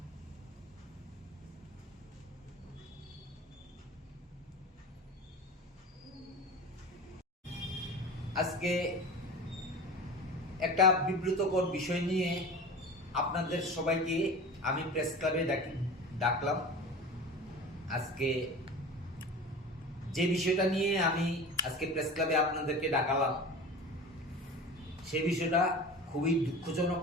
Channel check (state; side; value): normal; both; correlation 0.34